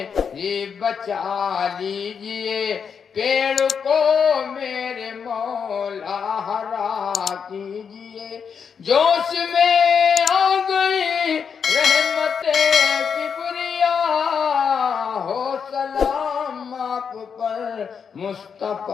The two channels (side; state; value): right; quieter; 6.6 dB